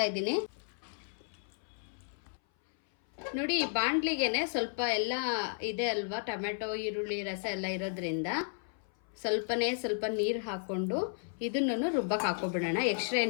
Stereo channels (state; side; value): silent; right; 55 dB below the other